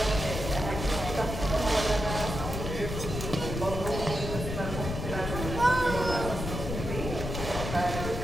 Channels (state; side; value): noise; left; rumble, 5 dB below the sound